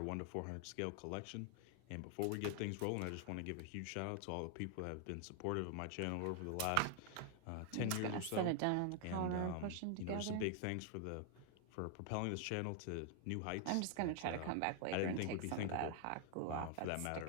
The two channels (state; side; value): different; both; correlation 0.00